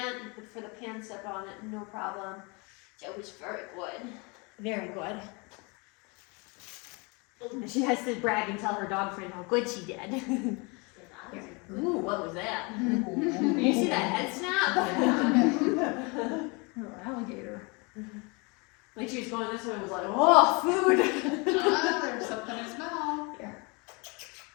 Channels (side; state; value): right; quieter; 29.7 dB